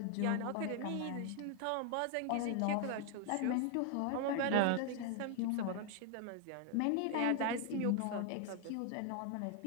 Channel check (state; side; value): different; both; correlation 0.00